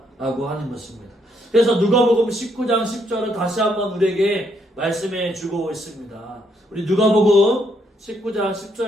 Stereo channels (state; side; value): normal; both; correlation 0.73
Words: 하는 것입니다. 그래서 누가복음 19장 10절은 다시 한번 우리에게 말씀해 주고 있습니다. 우리 누가복음 19장